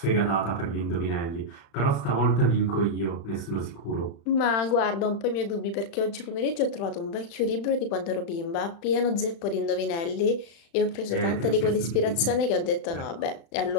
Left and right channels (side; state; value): right; late; 35 ms